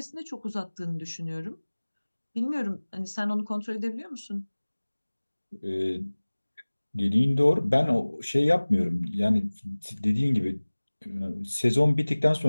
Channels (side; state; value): both; inverted; correlation -1.00